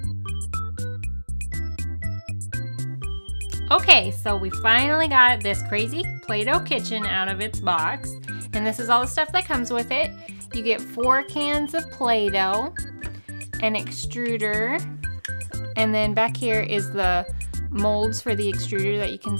Okay, so we finally got this crazy Play-Doh kitchen out of its box, and this is all the stuff that comes with it. You get 4 cans of Play-Doh, an extruder, and then back here is the molds for the extruder that you can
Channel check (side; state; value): both; inverted; correlation -1.00